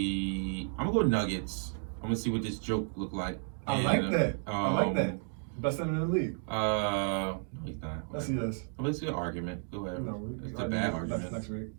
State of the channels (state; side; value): silent; left; 56 dB below the other